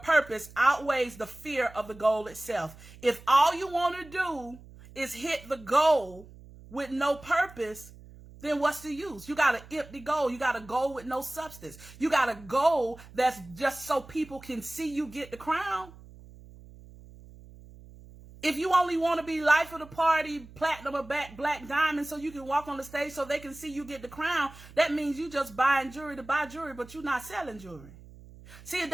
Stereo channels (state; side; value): noise; right; hum, 20 dB below the sound